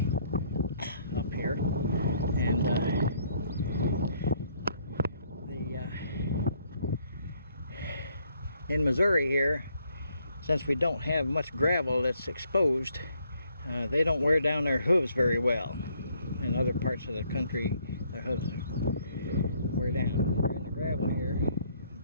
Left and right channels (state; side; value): inverted; both; correlation -0.68